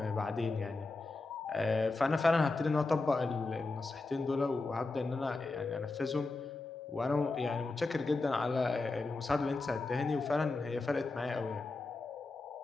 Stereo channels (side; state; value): right; quieter; 3.4 dB